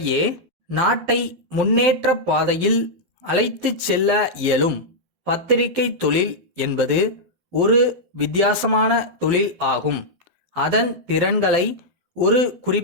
நாட்டை முன்னேற்ற பாதையில் அழைத்துச் செல்ல இயலும். பத்திரிகை தொழில் என்பது ஒரு வித்தியாசமான தொழில் ஆகும். அதன் திறன்களை ஒரு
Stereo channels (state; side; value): late; left; 12 ms